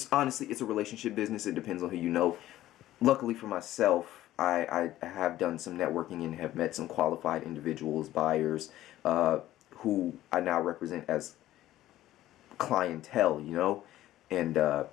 honestly, it's a relationship business. It depends on who you know. Luckily for myself, I have done some networking and have met some qualified individuals, buyers, who I now represent as clientele, and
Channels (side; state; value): right; quieter; 14.4 dB